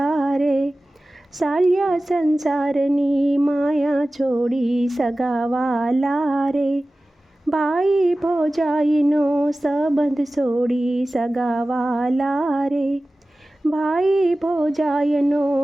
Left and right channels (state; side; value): normal; both; correlation 0.96